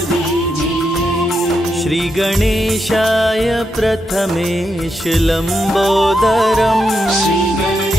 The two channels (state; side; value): normal; both; correlation 0.83